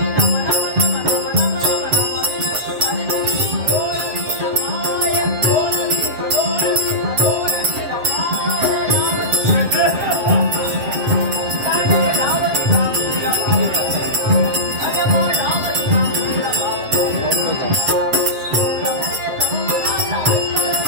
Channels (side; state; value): left; late; 7.6 ms